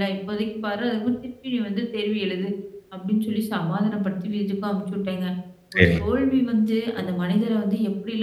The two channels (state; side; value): identical; both; correlation 1.00